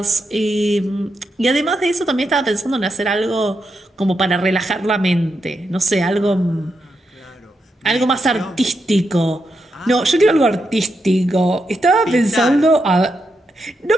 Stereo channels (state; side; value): normal; both; correlation 0.84